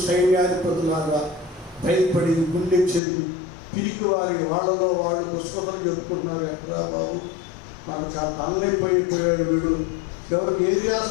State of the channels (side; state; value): right; drops out; at 3.0 s